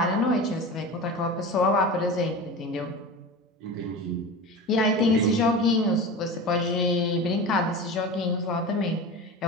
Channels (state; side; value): normal; both; correlation 0.30